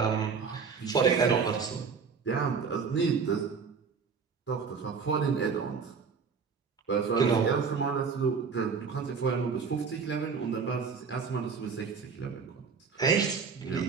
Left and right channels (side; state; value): left; quieter; 5.6 dB